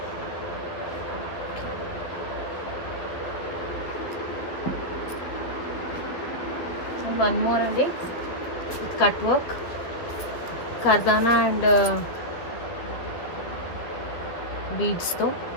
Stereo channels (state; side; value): late; right; 12 ms